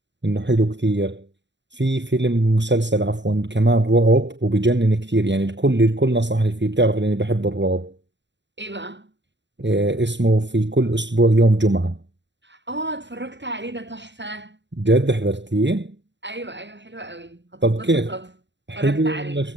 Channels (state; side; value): late; left; 0.52 ms